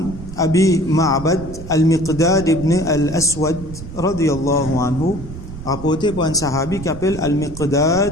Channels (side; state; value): right; noise; rumble, 12 dB below the sound